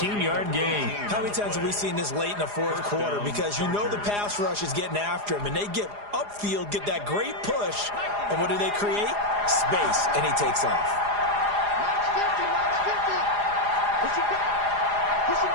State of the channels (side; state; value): left; late; 4.9 ms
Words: gain. How many times have we seen this late in the 4th quarter? Because you know the pass rush is getting after him, and they get upfield, get that great push, and what do they create? Space, and he takes off.